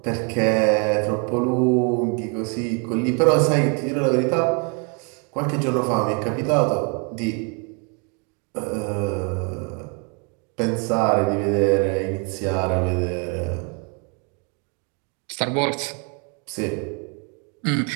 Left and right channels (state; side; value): quieter; left; 36.4 dB